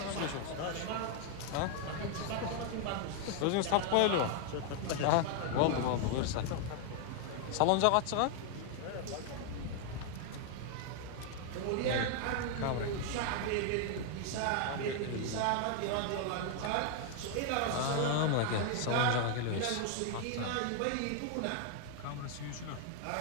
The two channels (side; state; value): both; different; correlation 0.00